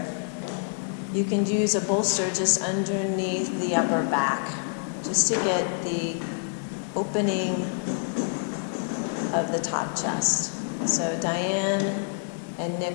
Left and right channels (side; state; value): right; silent; 60 dB below the other